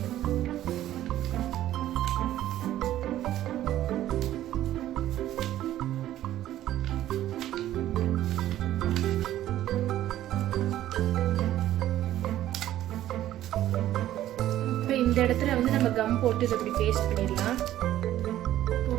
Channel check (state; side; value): quieter; left; 13.2 dB